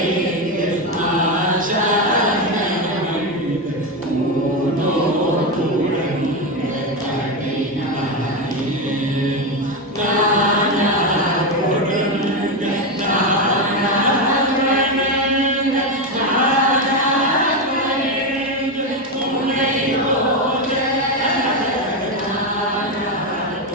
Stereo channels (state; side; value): normal; both; correlation 0.12